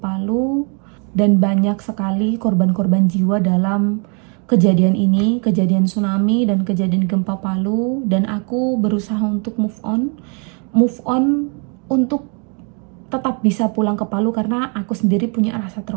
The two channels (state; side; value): quieter; left; 36.6 dB